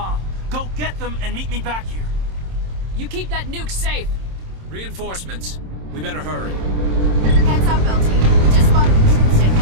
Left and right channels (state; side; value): late; left; 27 ms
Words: Go get them and meet me back here. You keep that nuke safe. Reinforcements. We better hurry. Heads up, LT. We just spotted a troop ship